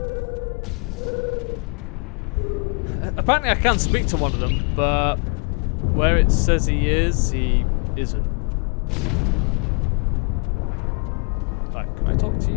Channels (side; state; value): right; quieter; 35.8 dB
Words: Apparently I can speak to one of them, but where it says he isn't. Right, can I talk to